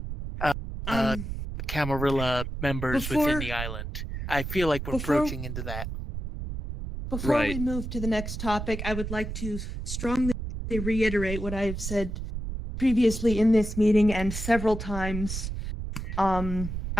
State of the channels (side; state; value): right; noise; rumble, 6 dB below the sound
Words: Camarilla members within the island. I feel like we're approaching into that. Before we move to the next topic, I would like to strongly reiterate what I have said previously in this meeting and several times in